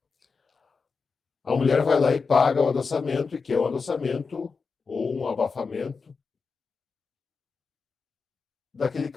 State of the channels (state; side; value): quieter; right; 4.9 dB